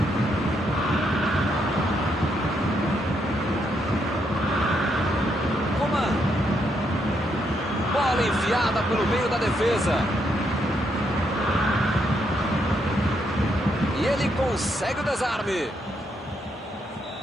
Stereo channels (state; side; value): normal; both; correlation 0.77